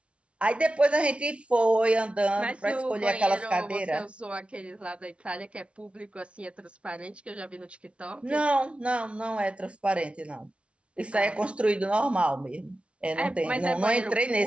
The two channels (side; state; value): left; late; 0.060 ms